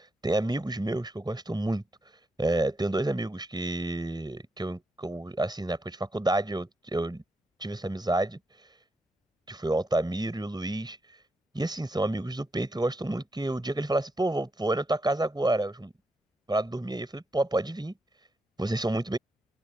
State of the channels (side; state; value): both; normal; correlation 0.82